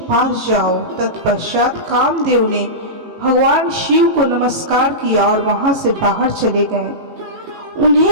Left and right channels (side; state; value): left; late; 18 ms